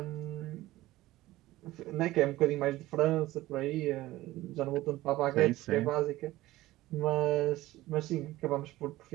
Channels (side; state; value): left; quieter; 17.0 dB